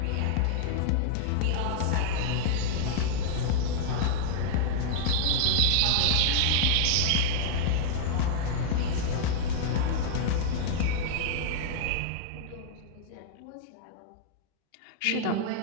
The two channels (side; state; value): both; different; correlation -0.01